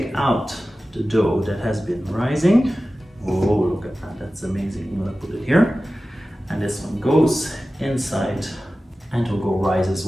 out the dough that has been rising. Oh, look at that, that's amazing. I'm going to put it here. And this one goes inside and will go rise as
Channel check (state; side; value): normal; both; correlation 0.95